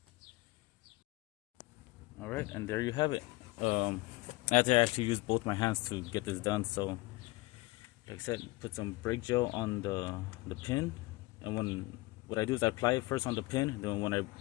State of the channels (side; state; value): right; quieter; 21.3 dB